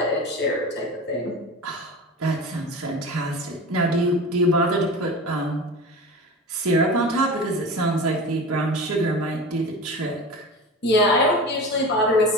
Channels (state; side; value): normal; both; correlation 0.31